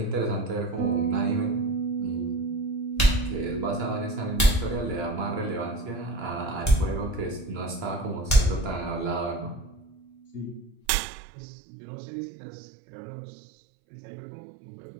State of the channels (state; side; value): drops out; left; at 10.8 s